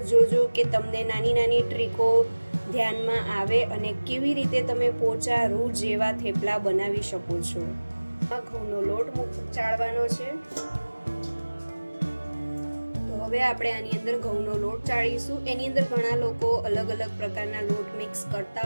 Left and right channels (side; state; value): both; inverted; correlation -1.00